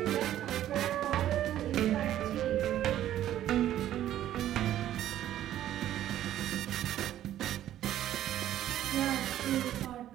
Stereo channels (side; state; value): left; quieter; 12.3 dB